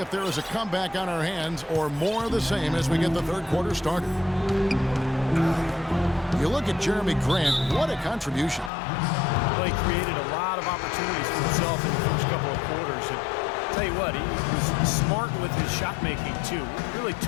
there is a comeback on our hands or more of the same as we get the third quarter started. You look at Jeremy Grant, what a contribution. Well, he created a lot of opportunities for himself in the first couple of quarters. And tell you what, he was smart with his shot making too. Really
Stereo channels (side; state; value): right; drops out; at 8.7 s